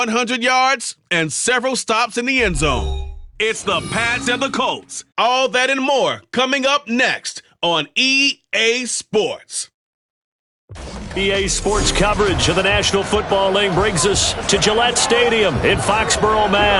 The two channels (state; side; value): identical; both; correlation 1.00